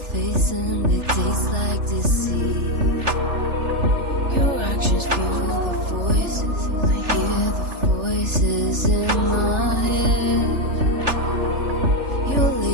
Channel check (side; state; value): left; late; 3.4 ms